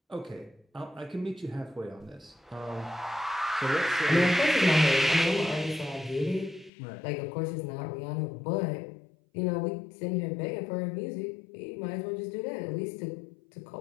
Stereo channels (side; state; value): right; drops out; at 6.7 s